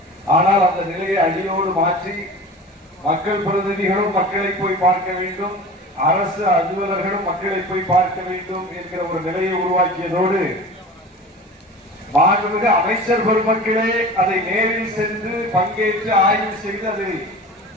ஆனால் அந்த நிலையை அடியோடு மாற்றி மக்கள் பிரதிநிதிகளும் மக்களை போய் பார்க்க வேண்டும், அரசு அலுவலர்களும் மக்களை போய் பார்க்க வேண்டும் என்கிற ஒரு நிலையை உருவாக்கியதோடு மாண்புமிகு அமைச்சர் பெருமக்களே அதை நேரில் சென்று பங்கேற்று ஆய்வு செய்து அதை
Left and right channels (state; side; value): normal; both; correlation 0.36